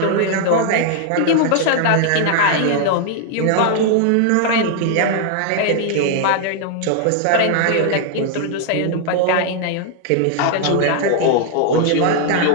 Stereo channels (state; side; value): different; both; correlation 0.00